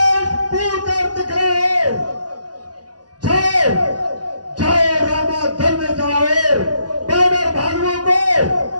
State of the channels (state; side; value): late; left; 0.69 ms